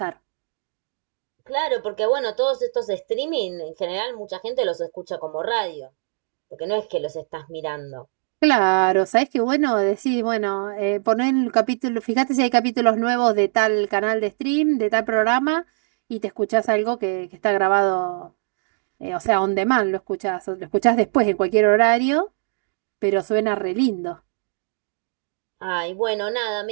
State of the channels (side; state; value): left; silent; digital silence